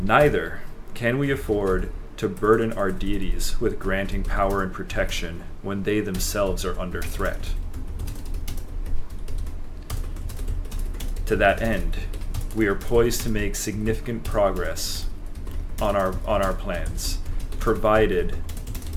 Neither can we afford to burden our deities with granting power and protection when they themselves are under threat. To that end, we are poised to make significant progress on our plans, provided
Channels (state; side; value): identical; both; correlation 1.00